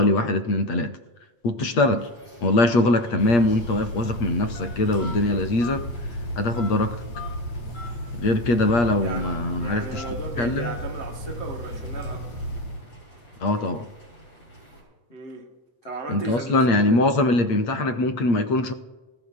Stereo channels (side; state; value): right; late; 8.4 ms